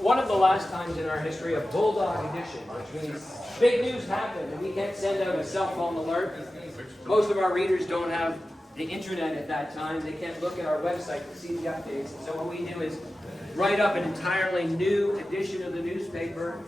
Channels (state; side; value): normal; both; correlation 0.94